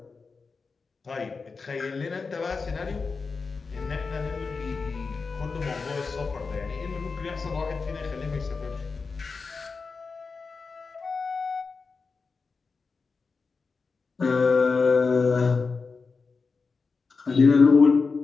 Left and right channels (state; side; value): quieter; right; 4.6 dB